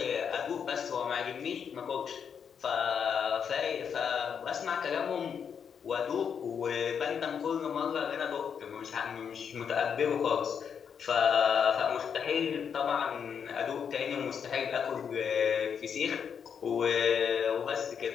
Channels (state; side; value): quieter; right; 7.2 dB